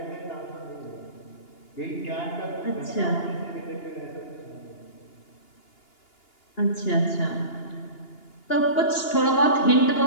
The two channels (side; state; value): right; late; 2.8 ms